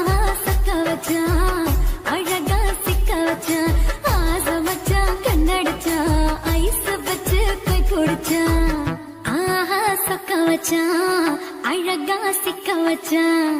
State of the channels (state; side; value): identical; both; correlation 1.00